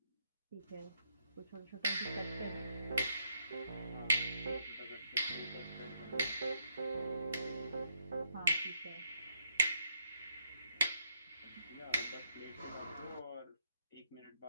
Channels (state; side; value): inverted; both; correlation -0.73